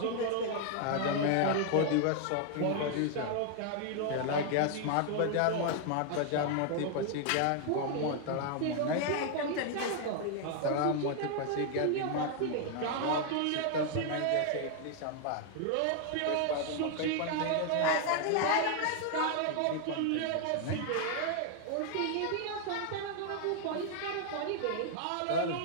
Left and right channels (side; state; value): both; different; correlation 0.00